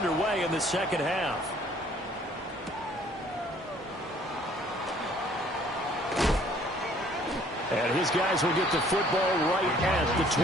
in the second half. And his guys will get the football right at the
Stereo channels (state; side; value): normal; both; correlation 0.58